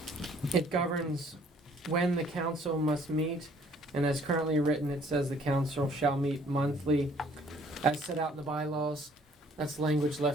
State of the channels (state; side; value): normal; both; correlation 0.59